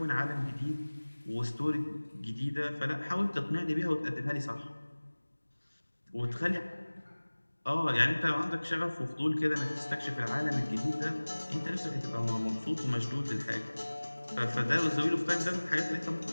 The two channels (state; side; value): inverted; both; correlation -1.00